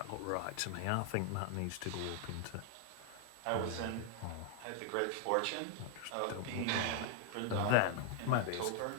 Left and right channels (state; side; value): different; both; correlation 0.00